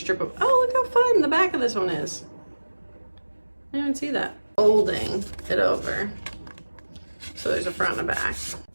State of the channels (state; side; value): inverted; both; correlation -1.00